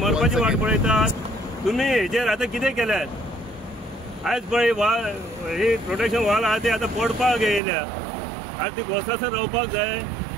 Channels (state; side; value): drops out; left; at 7.6 s